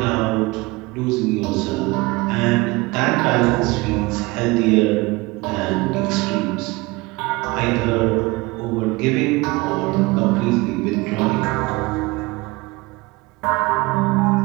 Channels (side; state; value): left; quieter; 23.1 dB